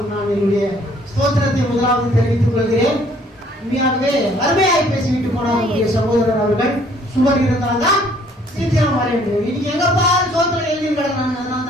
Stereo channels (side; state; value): both; normal; correlation 0.61